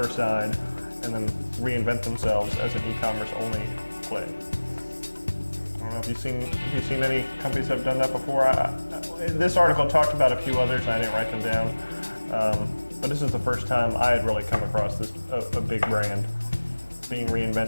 side and then reinvent themselves as an e-commerce only play. I don't know if you've seen any companies that have done that before. This article talked about a few others. I didn't write them down, but this is the first time I had really come across a big brand being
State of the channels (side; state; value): both; inverted; correlation -1.00